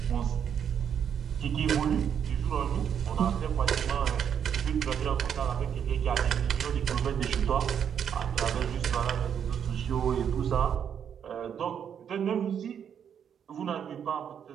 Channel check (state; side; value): quieter; left; 8.3 dB